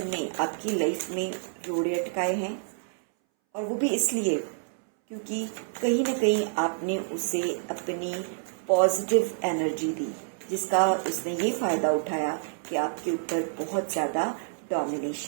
ने आपकी लाइफ में रोड़े अटकाए हैं, और वो भी इसलिए क्योंकि कहीं ना कहीं आपने उसे अपनी पॉजिटिव एनर्जी दी, जिसका उसने ये फ़ायदा उठाया कि आपके ऊपर बहुत ज़्यादा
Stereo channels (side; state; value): left; silent; 59 dB below the other